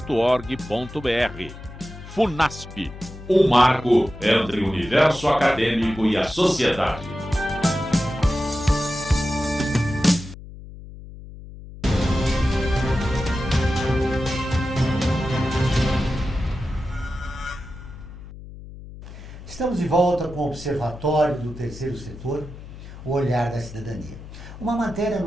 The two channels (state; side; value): noise; left; hum, 15 dB below the sound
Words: FUNASP, um marco entre o universo acadêmico e a sociedade. Estamos de volta com o Observatório do Terceiro Setor, o Olhar da Cidadania. Uma matéria